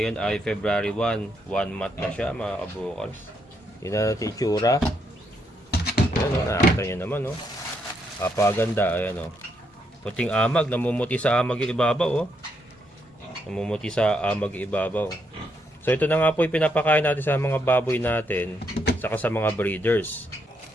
ay February 1, 1 month na siya mga kabokals. Yun na natin itsura. Ayan o, nakakita nyo naman o. Kapaganda, ayan o. Puting amag, namumuti sa amag yung ibabaw o. Namumuti sa amag yung ibabaw. So ito na nga po yung pinapakain natin sa mga baboy natin, saka sa mga breeders.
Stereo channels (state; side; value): normal; both; correlation 0.77